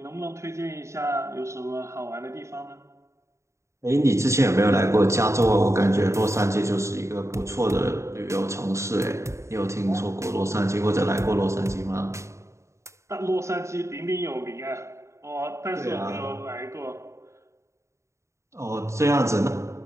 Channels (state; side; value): late; left; 0.14 ms